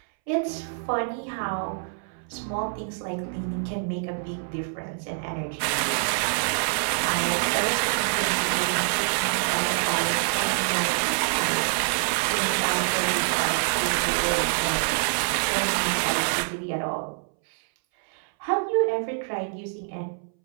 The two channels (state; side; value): silent; left; 61 dB below the other